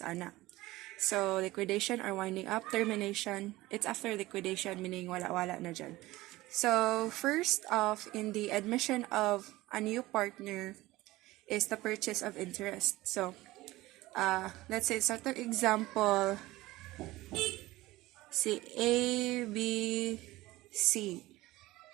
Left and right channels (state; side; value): quieter; left; 18.4 dB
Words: ana. So, liquidation or winding up, termination, it's after liquidation, meaning wala-wala na dyan. So, first off, in the admission of a new partner is the purchase of interest. So, let's say, sa itong example, si A, B, C.